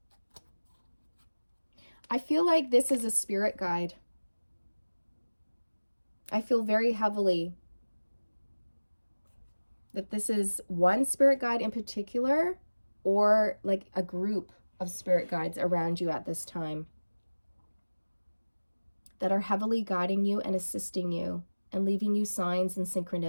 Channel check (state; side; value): inverted; both; correlation -1.00